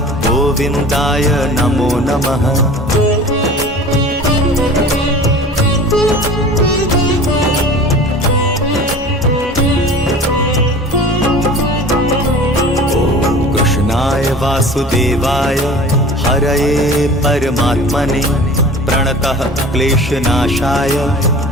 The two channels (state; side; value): normal; both; correlation 0.41